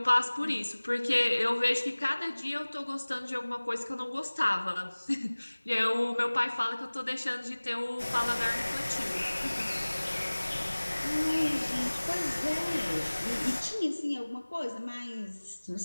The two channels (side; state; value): both; inverted; correlation -1.00